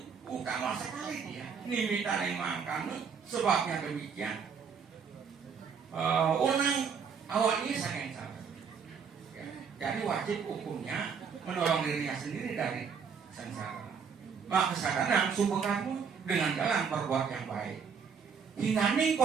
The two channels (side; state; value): left; quieter; 6.3 dB